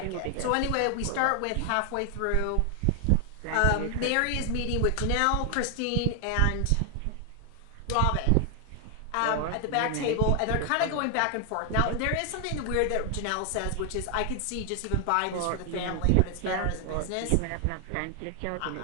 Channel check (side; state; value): both; different; correlation 0.00